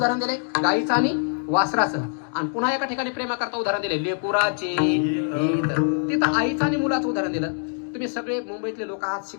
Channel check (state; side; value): silent; right; 63 dB below the other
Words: दिले? गायीचं आणि वासराचं. आणि पुन्हा एका ठिकाणी प्रेमाकरता उदाहरण दिले लेकुराचे, तिथं आईचं आणि मुलाचं उदाहरण दिलं. तुम्ही सगळे मुंबईतले लोक आहात,